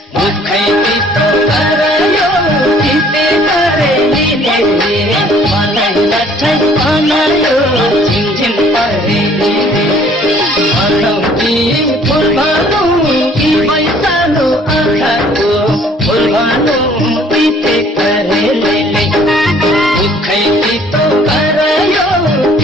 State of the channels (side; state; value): both; normal; correlation 0.57